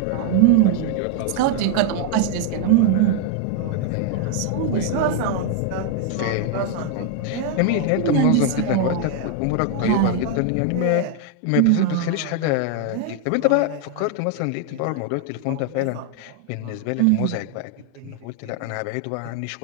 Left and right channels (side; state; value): both; different; correlation 0.01